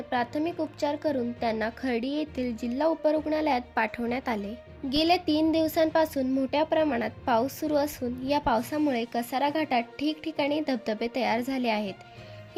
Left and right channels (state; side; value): identical; both; correlation 1.00